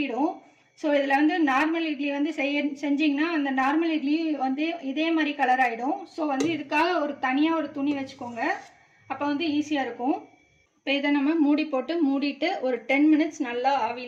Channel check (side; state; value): both; identical; correlation 1.00